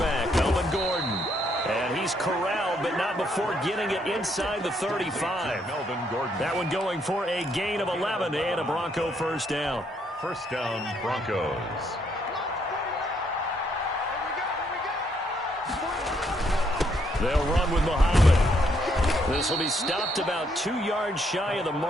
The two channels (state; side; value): normal; both; correlation 0.72